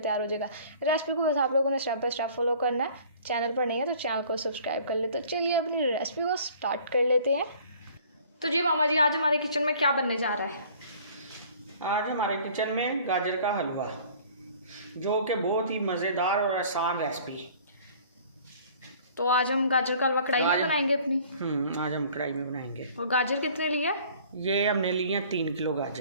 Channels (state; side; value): inverted; both; correlation -0.51